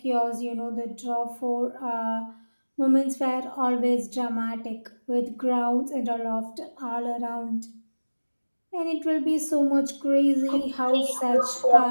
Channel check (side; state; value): both; inverted; correlation -1.00